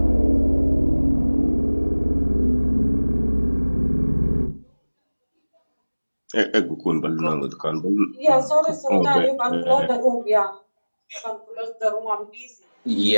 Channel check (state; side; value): inverted; both; correlation -1.00